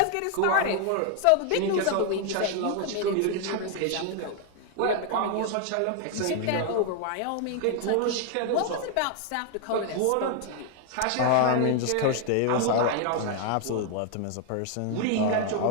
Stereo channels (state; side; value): different; both; correlation 0.00